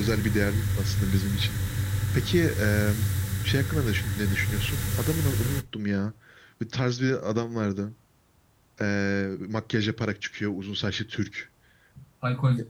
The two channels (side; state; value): both; identical; correlation 1.00